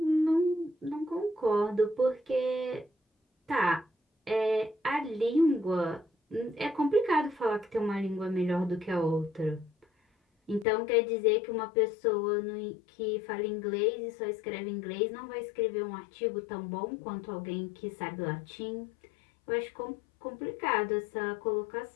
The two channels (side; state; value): right; drops out; at 10.7 s